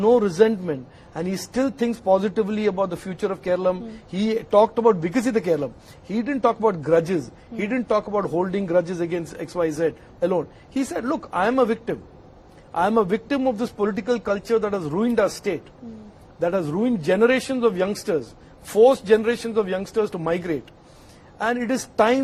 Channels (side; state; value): both; identical; correlation 1.00